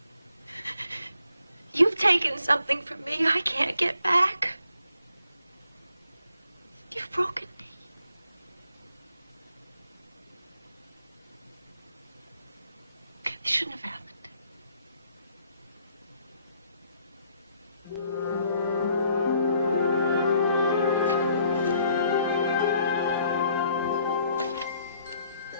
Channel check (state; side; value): inverted; both; correlation -0.67